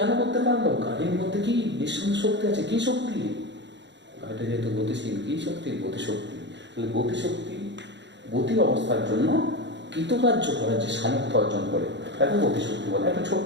করতে পারলো? গাড়ির মধ্যে কি নিঃসন্দেহে শক্তি আছে। কি শক্তি? গাড়িটা যেহেতু গতিশীল, কি শক্তি? গতিশক্তি। তাহলে গতিশক্তি গতি অবস্থার জন্য কৃতকার্য করার যে সামর্থ্য অর্জন করে তাকে গতিশক্তি বলে। একটা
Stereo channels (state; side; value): late; left; 0.52 ms